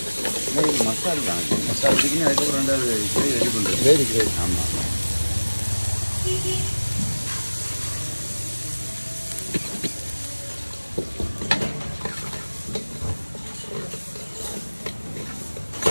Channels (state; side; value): inverted; both; correlation -1.00